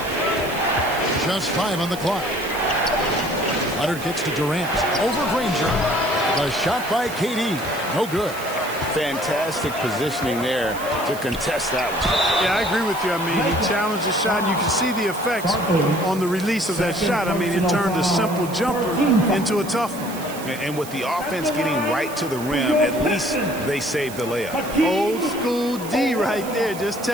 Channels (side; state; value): right; noise; hiss, 14 dB below the sound